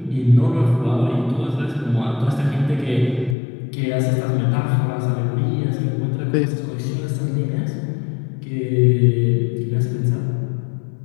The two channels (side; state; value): right; drops out; at 3.4 s